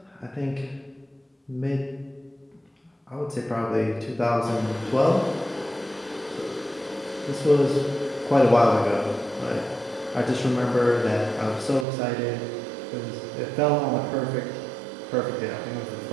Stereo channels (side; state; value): left; drops out; at 11.9 s